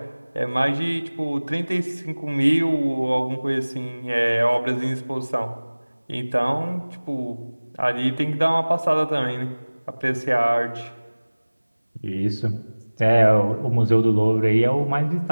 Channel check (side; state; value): both; inverted; correlation -1.00